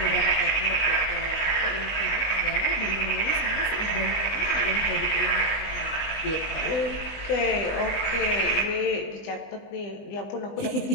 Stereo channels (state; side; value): late; right; 20 ms